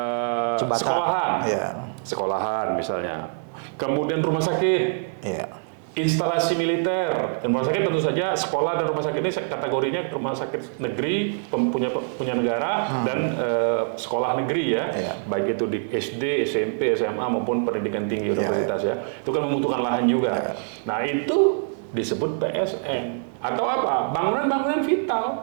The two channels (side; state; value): left; silent; digital silence